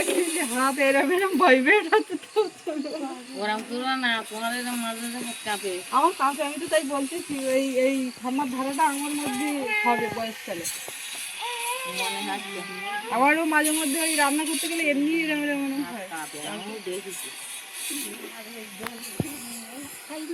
যে হাত এরম এরম ভাইব্রেট হচ্ছে তো ওরম করো না, তোমার এরকম মাঝে মাঝে হাত কাঁপে। আমার কাছে, আমি তো তাই বলতেছি এই এই ঠান্ডার ধারাটা আমার মধ্যে হবে বয়সকালে। মনে হচ্ছে আমারও মাঝে মধ্যে ওই রান্না করতে গেলে এমনি এরম এরম মনে হাত হয়। কাঁপে, আমিও দেখেছি।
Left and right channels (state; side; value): identical; both; correlation 1.00